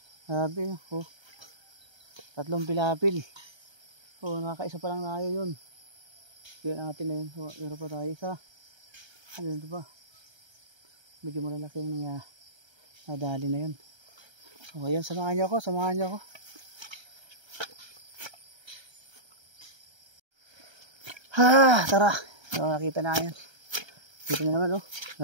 Grabe, oh. Tatlong pilapil. Oh, nakakaisa pa lang tayo yun. Kaya natin na yun. So, meron pa tayo isa. Ayun, ito pa. Medyo malalaki yung nadali na yun. So, ayan, samahan niyo ako, samahan niyo ako. Ha, tara. So, nakita na yan. Dito na naman, oh.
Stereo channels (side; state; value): left; late; 1.3 ms